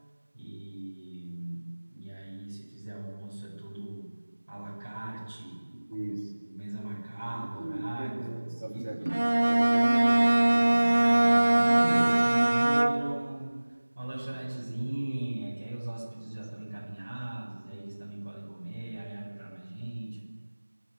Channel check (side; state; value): both; inverted; correlation -1.00